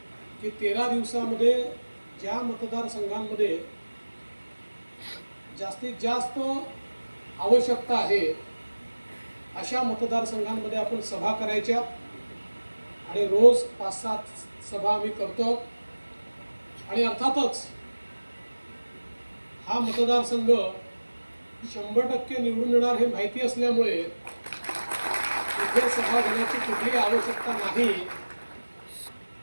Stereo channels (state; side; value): inverted; both; correlation -1.00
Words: की 13 दिवसामध्ये ज्या मतदारसंघांमध्ये जास्तीत जास्त आवश्यकता आहे अशा मतदारसंघांमध्ये आपण सभा करायच्या. आणि रोज 5-7 सभा आम्ही करतो. आणि अर्थातच हा मतदारसंघ 100% निवडून येणार हे माहिती असल्यामुळे इथे सभा घेण्याची कुठलीही आवश्यकता नाही